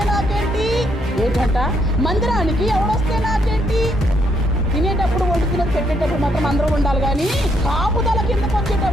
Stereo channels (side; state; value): both; normal; correlation 0.74